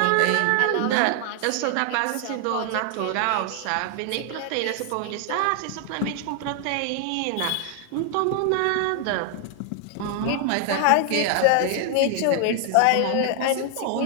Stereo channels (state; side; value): different; both; correlation 0.00